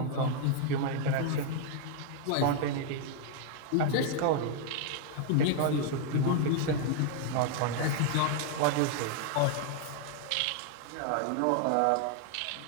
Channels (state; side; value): different; both; correlation 0.00